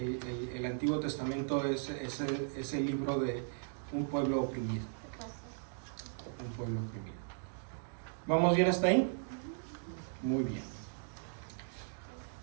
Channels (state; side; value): silent; left; digital silence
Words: Antiguo Testamento es el libro de un pueblo oprimido. Un pueblo oprimido. ¿Vamos bien hasta ahí? Muy bien.